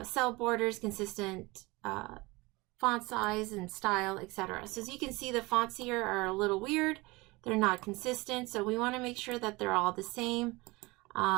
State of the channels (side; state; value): left; quieter; 23.4 dB